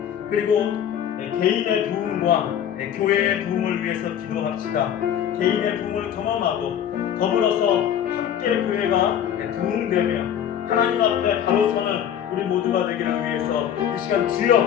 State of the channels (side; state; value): right; quieter; 9.6 dB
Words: 그리고 개인의 부흥과 교회의 부흥을 위해서 기도합시다. 개인의 부흥을 경험하고 더불어서 함께 교회가 부흥되며 하나님 앞에 바로 서는 우리 모두가 되기를 위해서 이 시간 주여